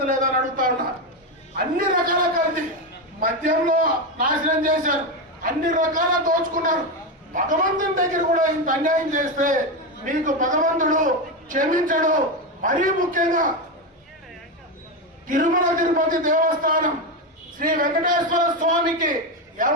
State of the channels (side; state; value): both; normal; correlation 0.12